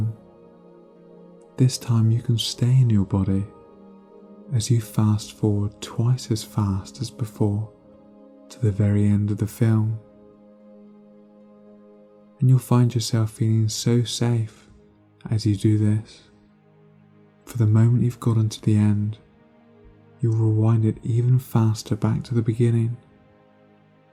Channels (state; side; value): identical; both; correlation 1.00